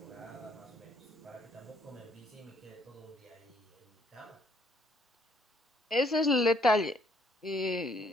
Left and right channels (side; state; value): both; normal; correlation 0.66